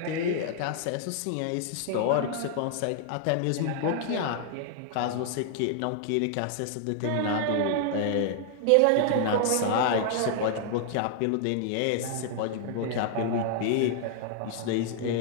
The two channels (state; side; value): different; both; correlation -0.01